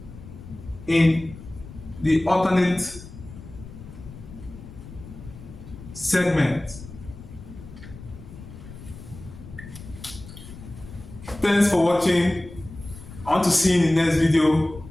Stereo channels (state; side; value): noise; left; rumble, 15 dB below the sound